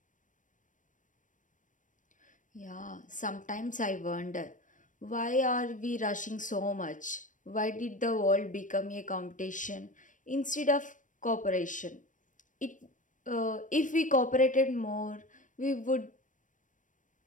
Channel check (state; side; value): late; right; 0.37 ms